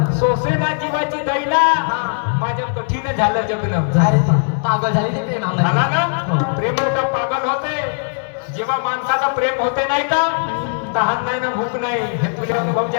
सोसेना जीवाची दैना माझं कठीण झालं जगणं पागल झाली ते प्रेमामध्ये. झाला ना प्रेम होतं पागल होते जेव्हा माणसाचं प्रेम होते नाही का तहान नाही ना भूक नाही हे तुझे अनुभव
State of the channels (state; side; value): silent; right; digital silence